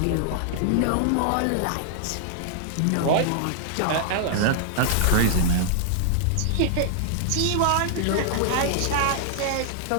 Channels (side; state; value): both; different; correlation -0.01